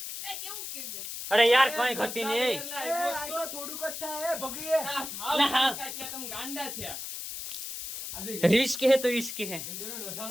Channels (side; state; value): left; noise; hiss, 7 dB below the sound